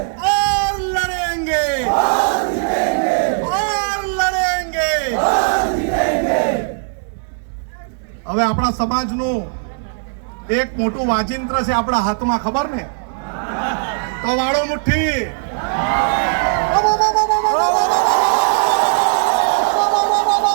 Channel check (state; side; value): silent; left; digital silence